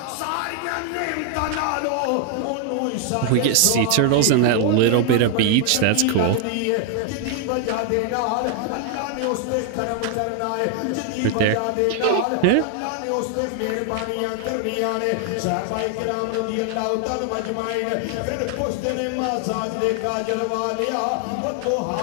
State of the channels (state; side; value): different; both; correlation 0.00